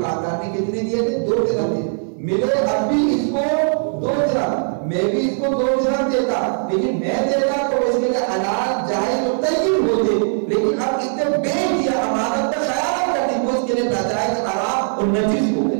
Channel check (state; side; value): silent; left; 66 dB below the other